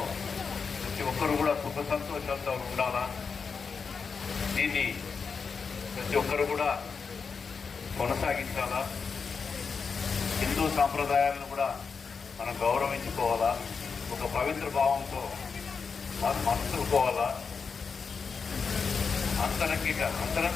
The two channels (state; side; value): quieter; right; 5.4 dB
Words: ప్రతి ఒక్కరు కూడా సుఖ సంతోషాలతో ఉండాలా. దీన్ని ప్రతి ఒక్కరు కూడా కొనసాగించాలా. హిందూ సాంప్రదాయాలను కూడా మనం గౌరవించుకోవాలా. ఒక పవిత్ర భావంతో మనం మనుషుకోవాలా.